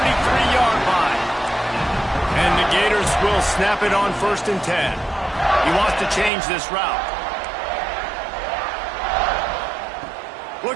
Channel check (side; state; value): left; drops out; at 6.3 s